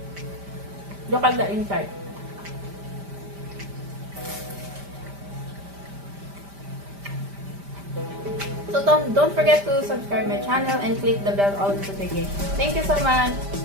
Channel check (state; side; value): late; left; 5.1 ms